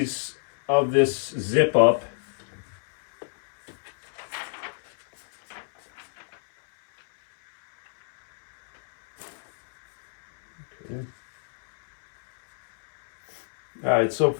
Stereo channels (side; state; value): right; silent; 61 dB below the other